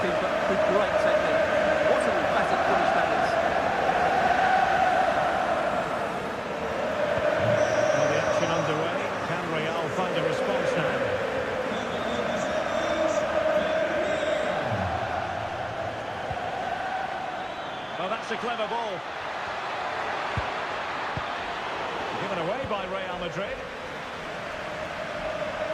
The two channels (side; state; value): both; identical; correlation 1.00